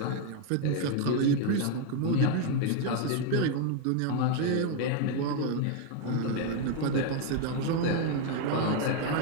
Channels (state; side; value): different; both; correlation 0.01